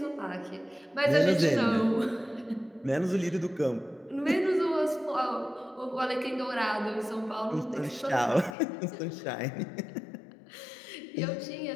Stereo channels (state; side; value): drops out; right; at 8.6 s